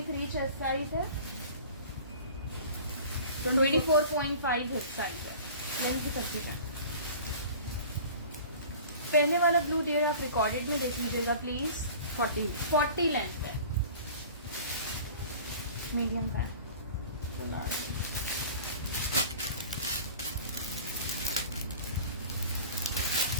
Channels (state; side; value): inverted; both; correlation -0.42